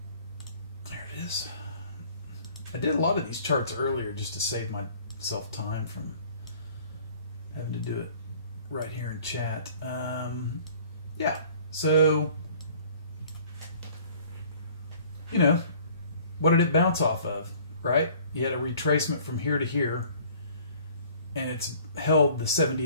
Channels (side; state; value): both; inverted; correlation -0.53